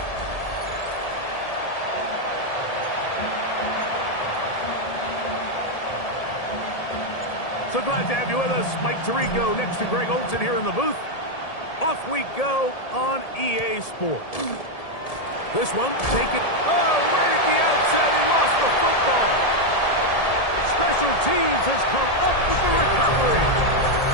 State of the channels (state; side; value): late; right; 1.7 ms